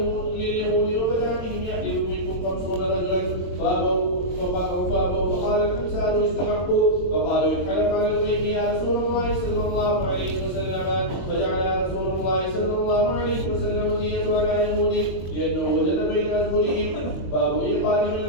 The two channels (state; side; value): late; right; 22 ms